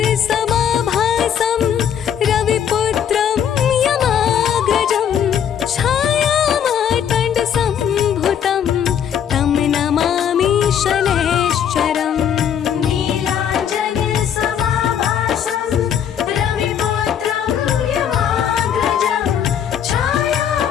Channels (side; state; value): right; quieter; 8.9 dB